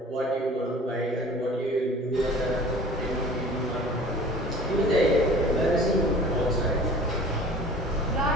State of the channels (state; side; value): normal; both; correlation 0.45